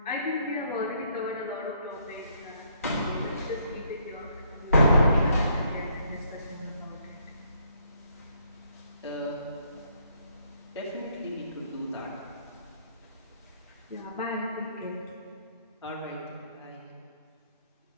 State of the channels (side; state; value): both; inverted; correlation -0.68